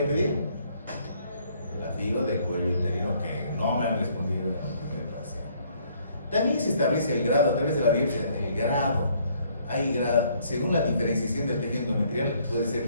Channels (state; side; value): inverted; both; correlation -0.64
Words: pedir? La FIGO de cuello uterino, que no me han respondido en el primer paciente. También se establece el grado a través de la biopsia, el grado. Hay grado, según la diferenciación del tejido endometrial, puede